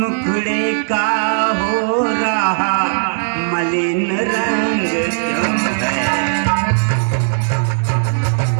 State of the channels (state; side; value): silent; left; digital silence